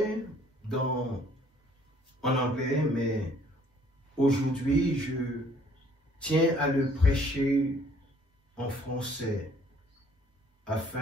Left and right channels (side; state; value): both; normal; correlation 0.60